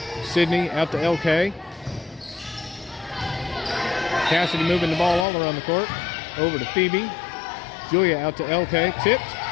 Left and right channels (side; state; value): right; drops out; at 5.2 s